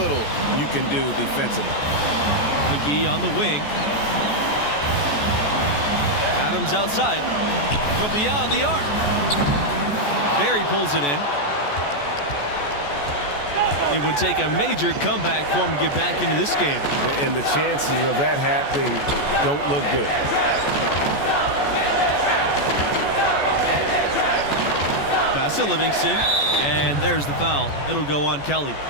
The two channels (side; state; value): right; late; 14 ms